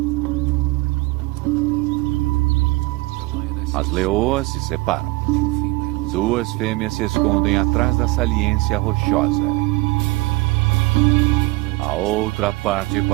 As leoas se separam. 2 fêmeas se escondem atrás da saliência rochosa. A outra parte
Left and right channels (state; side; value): quieter; left; 22.1 dB